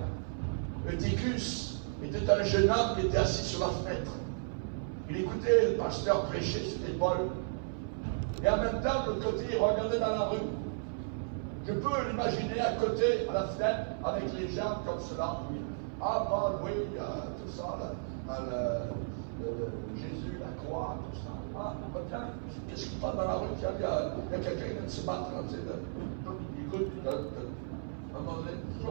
Eutychus était un jeune homme qui était assis sur la fenêtre. Il écoutait le pasteur prêcher, c'était Paul. Et en même temps, de l'autre côté, il regardait dans la rue. Je peux l'imaginer à côté, à la fenêtre, avec les gens comme cela. Ah, Paul, oui, tout ça, Jésus, la croix, tout ça. Ah, tiens, qu'est-ce qui passe dans la rue? Tiens, il y a quelqu'un qui vient de se battre. Il écoute, à un moment donné,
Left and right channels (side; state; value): left; silent; 55 dB below the other